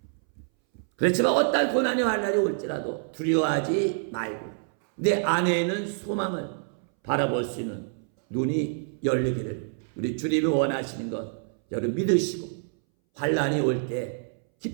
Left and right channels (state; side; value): silent; left; 60 dB below the other